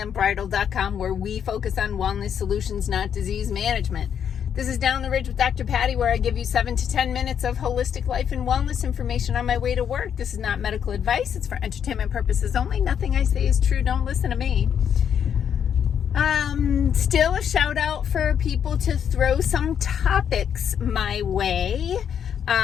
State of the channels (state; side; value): quieter; right; 8.3 dB